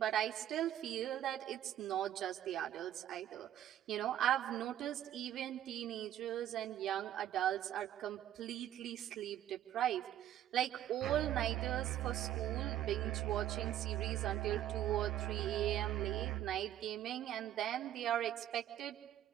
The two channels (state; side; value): quieter; left; 12.0 dB